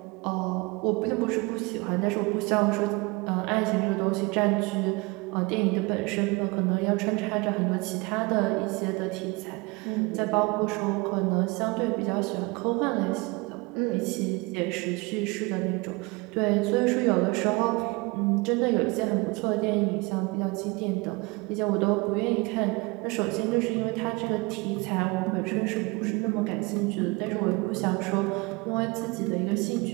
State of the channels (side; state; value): left; quieter; 25.9 dB